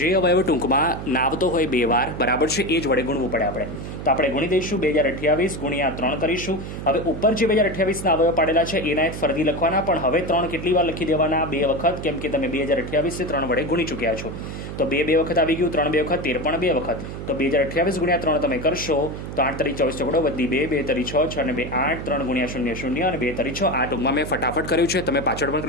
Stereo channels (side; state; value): right; noise; hum, 8 dB below the sound